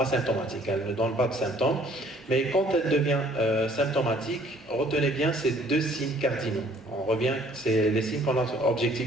elle ne donne pas de symptômes, mais quand elle devient symptomatique, retenez bien ces 2 signes cardinaux. On revient, c'est les signes qu'on a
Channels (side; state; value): both; normal; correlation 0.58